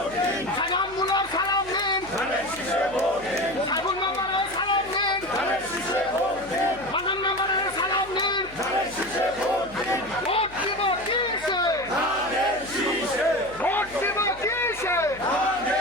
সাজান মুলার সালাম নিন, সাইফুল মেম্বারের সালাম নিন, মানন মেম্বারের সালাম নিন। ভোট দিব কিসে, ভোট দিব কিসে,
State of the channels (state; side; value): noise; left; hum, 20 dB below the sound